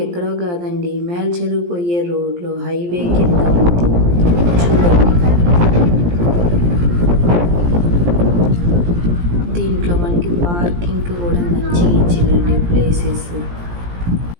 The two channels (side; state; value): left; late; 17 ms